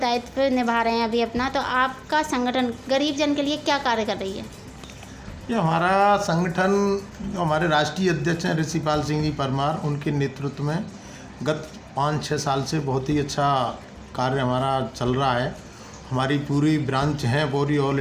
निभा रहे हैं अभी अपना, तो आपका संगठन गरीब जन के लिए क्या कार्य कर रही है? ये हमारा संगठन जो हमारे राष्ट्रीय अध्यक्ष हैं ऋषिपाल सिंह जी परमार, उनके नेतृत्व में गत 5-6 साल से बहुत ही अच्छा कार्य हमारा चल रहा है। हमारी पूरी ब्रांच हैं पूरी ऑल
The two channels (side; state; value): both; identical; correlation 1.00